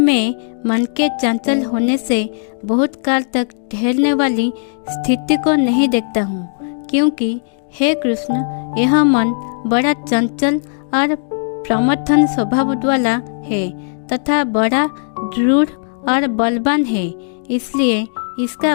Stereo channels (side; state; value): right; silent; digital silence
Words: मन के चंचल होने से बहुत काल तक ठहरने वाली स्थिति को नहीं देखता हूँ, क्योंकि हे कृष्ण, यह मन बड़ा चंचल और प्रमथन स्वभाव वाला है तथा बड़ा दृढ़ और बलवान है। इसलिए इसका